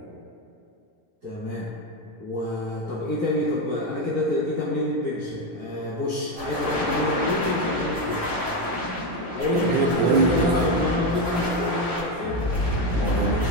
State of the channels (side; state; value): left; late; 17 ms